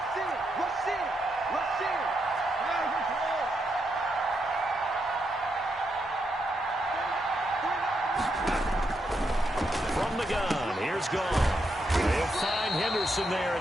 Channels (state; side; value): normal; both; correlation 0.81